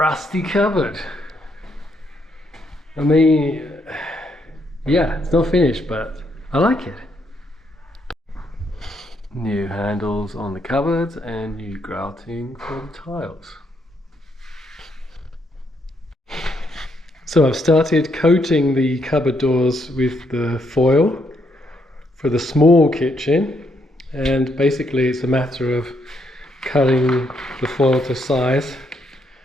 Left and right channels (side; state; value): both; normal; correlation 0.75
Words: rusty cupboard. I mean, yeah, it's not finished, but I like it. New handles on the cupboards and new grouting for the tiles. So I've started coating the cupboard doors with the foil for the small kitchen, and basically it's a matter of cutting the foil to size